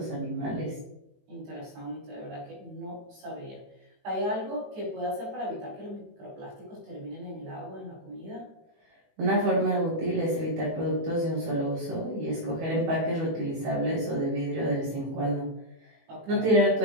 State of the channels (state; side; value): late; left; 18 ms